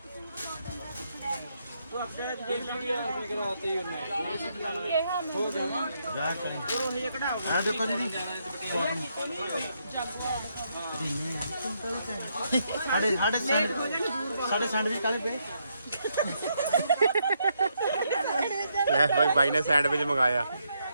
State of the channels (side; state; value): both; inverted; correlation -0.77